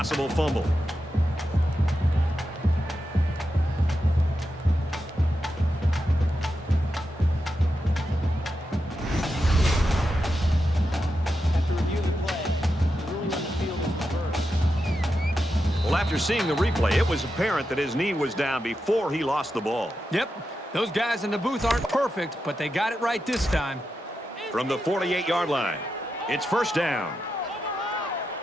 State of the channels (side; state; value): both; normal; correlation 0.88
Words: fumble. After reviewing the play, the ruling on the field is reversed. Well, after seeing the replay, it was apparent that his knee was down before he lost the ball. Yep. Those guys in the booth aren't perfect, but they got it right this time. From the 48-yard line, it's first down.